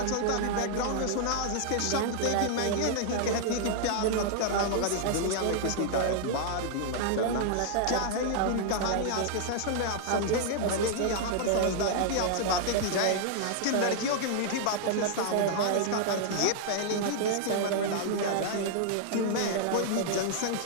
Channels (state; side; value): different; both; correlation 0.00